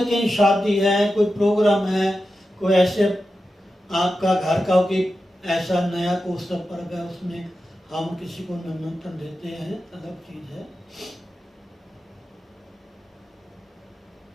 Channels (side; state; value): both; normal; correlation 0.91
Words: कहीं शादी है, कोई प्रोग्राम है, कोई ऐसे आपका घर का कोई ऐसा नया उत्सव पर्व है, उसमें हम किसी को निमंत्रण देते हैं, अलग चीज है।